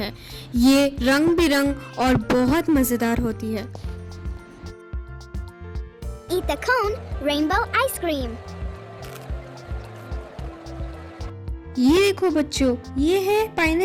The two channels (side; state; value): both; identical; correlation 1.00